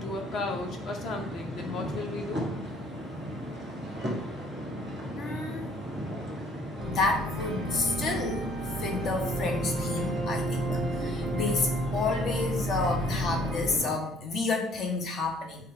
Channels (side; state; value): both; normal; correlation 0.59